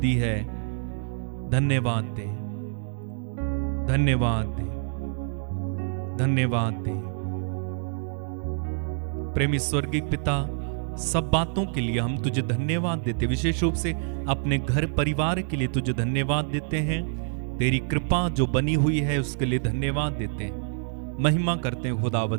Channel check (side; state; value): left; silent; 60 dB below the other